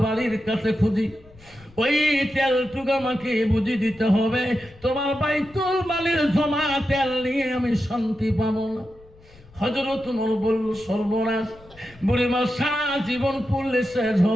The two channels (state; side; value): noise; left; rumble, 24 dB below the sound